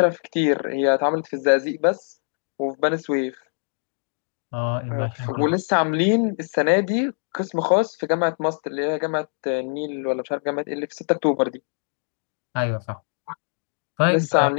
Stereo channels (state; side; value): silent; right; 63 dB below the other